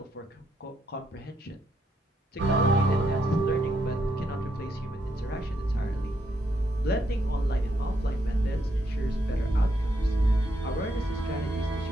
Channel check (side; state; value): both; normal; correlation 0.77